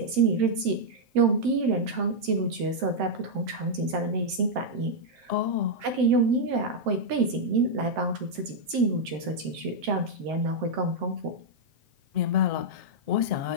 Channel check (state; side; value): late; left; 7.7 ms